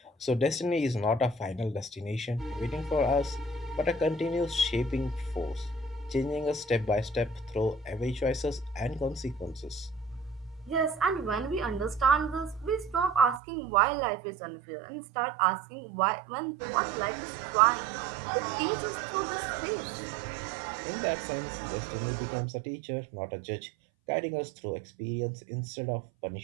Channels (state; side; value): drops out; left; at 13.4 s